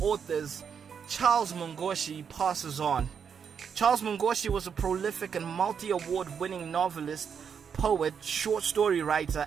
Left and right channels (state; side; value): quieter; left; 7.1 dB